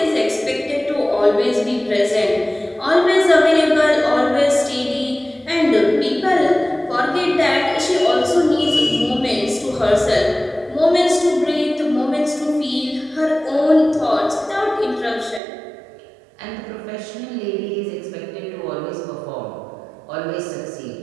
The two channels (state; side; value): drops out; left; at 15.4 s